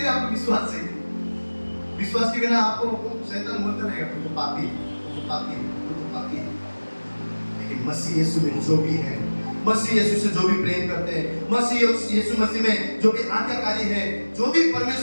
आपको विश्वास चाहिए। विश्वास के बिना आपको शैतान बोलता रहेगा तुम तो पापी, तुम तो पापी, तुम तो पापी। लेकिन मसीह यीशु में जो भी है, मसीह यीशु से जो भी प्रेम करते हैं, मसीह यीशु मसीह में जो भी आज्ञाकारी है, जो भी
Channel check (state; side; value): inverted; both; correlation -1.00